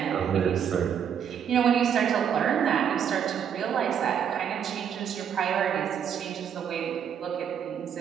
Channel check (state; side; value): quieter; left; 8.3 dB